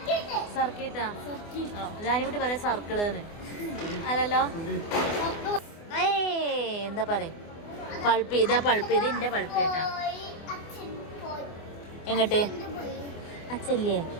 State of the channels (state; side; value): late; right; 24 ms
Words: സർക്കിട്ടാ? ജാനിക്കുട്ടി പറയാ സർക്കിള് അല്ലല്ലോ. എന്താ പറയാ? പൾപ്പ്. ഇതാ പൾപ്പ്. ഇത് എന്റെ പൾപ്പ് കേട്ടാ. എങ്ങോട്ട്? അച്ഛല്ലേ,